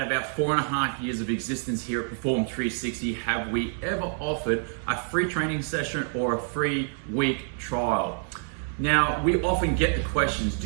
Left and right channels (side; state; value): left; silent; 60 dB below the other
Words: of our 4.5 years of existence here at Perform 360 have we ever offered a free training session or a free week trial. Now, we often get the questions,